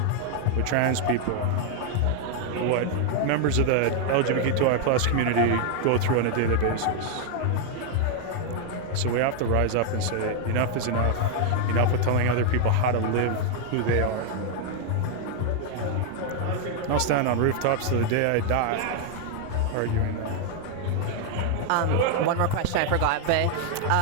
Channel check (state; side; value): different; both; correlation 0.00